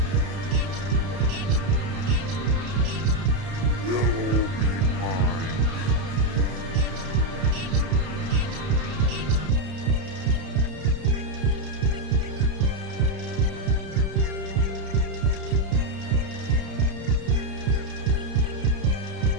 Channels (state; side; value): late; left; 32 ms